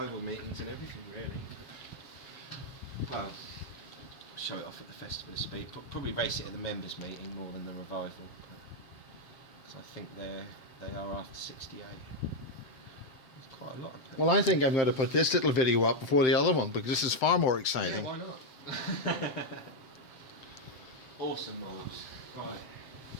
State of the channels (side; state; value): right; late; 7.8 ms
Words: meetings and everything, really. Well, show it off at the Festival of Speed. Probably race it at the members' meeting more than the revival. So I think they are after 68. There's quite a lot of them. Well, I think I'm going to put this little video up before the other one because this is far more exciting. Yeah, why not? Awesome, Miles. Right.